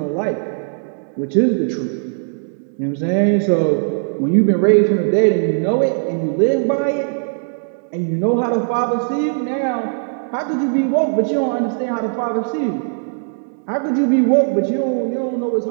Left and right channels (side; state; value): left; silent; digital silence